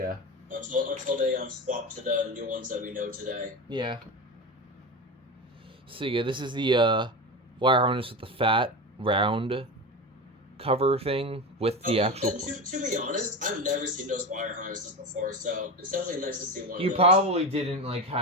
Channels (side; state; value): both; normal; correlation 0.23